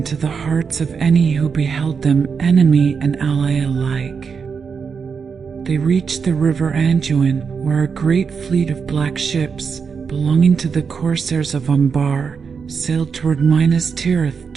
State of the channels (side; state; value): left; quieter; 5.9 dB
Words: the hearts of any who beheld them, enemy and ally alike. They reached the river Anduin, where a great fleet of black ships, belonging to the corsairs of Umbar, sailed toward Minas Tirith